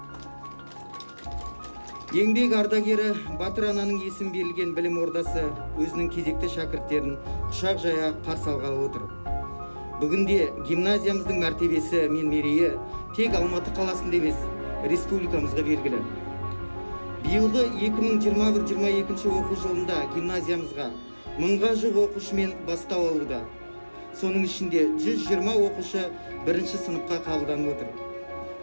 Еңбек ардагері Батыр ананың есім берілген білім ордасы өзінің кезекті шәкірттерін құшақ жая қарсы алғалы отыр. Бүгінде гимназиямыздың мәртебесі мен мерейі тек Алматы қаласында емес, республикамызға белгілі. Биылғы 2021-22 оқу жылында гимназиямызға 1000-ға жуық оқушымен бастау алуда. Соның ішінде 120 оқушы 1-ші сыныпқа қабылданып отыр.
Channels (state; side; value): inverted; both; correlation -1.00